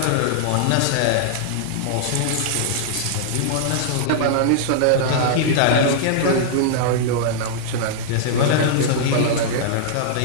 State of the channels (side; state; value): both; different; correlation -0.01